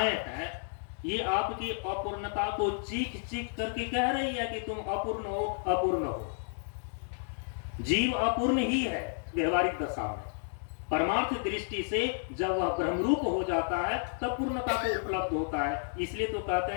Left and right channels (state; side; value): silent; right; digital silence